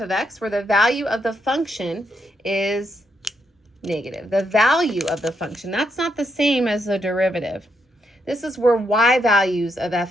of x where the value of the function is negative. The value of the function, that's not the same as the derivative. This is where y values of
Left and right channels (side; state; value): both; normal; correlation 0.79